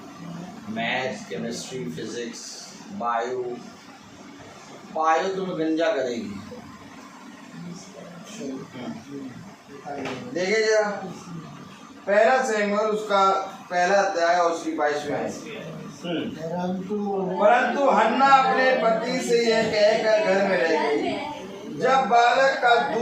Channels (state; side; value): identical; both; correlation 1.00